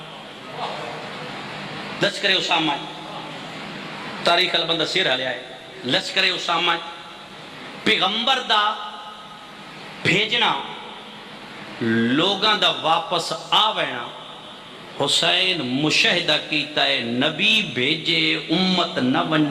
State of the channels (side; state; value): both; identical; correlation 1.00